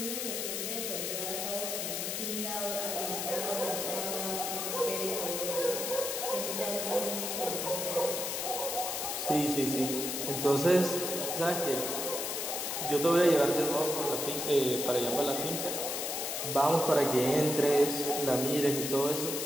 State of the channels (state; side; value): noise; left; hiss, 2 dB below the sound